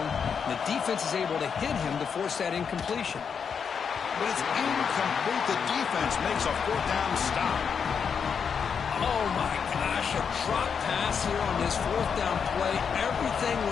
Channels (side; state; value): right; quieter; 6.6 dB